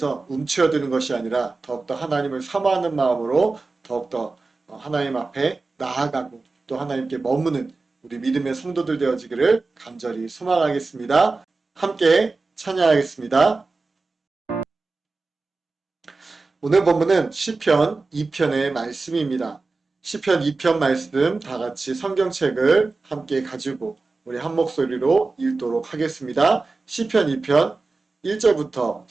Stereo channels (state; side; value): quieter; left; 3.8 dB